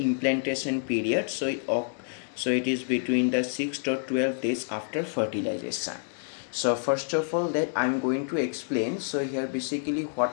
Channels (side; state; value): right; silent; digital silence